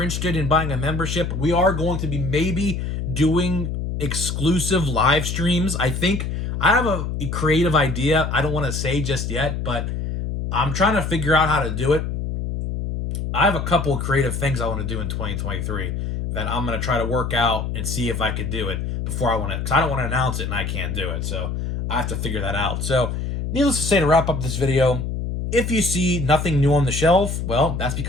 interested in buying a membership, we are going to be maybe doing exclusive live streams. I think I have a creative idea. I don't want to say just yet, but I'm trying to figure out how to do it. I have a couple of creative things I want to do in 2023 that I'm going to try to work out and see if I could do it before I want to, because I don't want to announce it and I can't do it. So I have to figure that out. So needless to say, to wrap up this video, if you see nothing new on the shelf, well, that's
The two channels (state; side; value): noise; left; hum, 3 dB below the sound